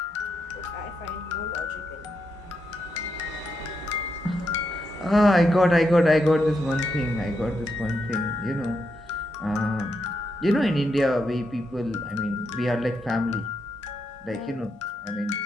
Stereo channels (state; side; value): normal; both; correlation 0.82